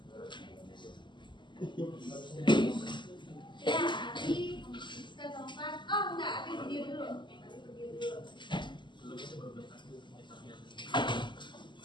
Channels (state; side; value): late; right; 0.22 ms